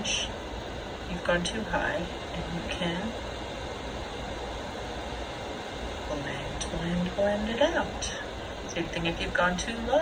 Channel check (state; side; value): identical; both; correlation 1.00